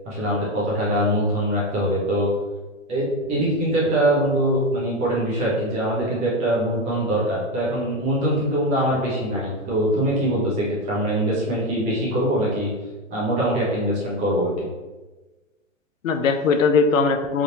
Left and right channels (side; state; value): both; normal; correlation 0.18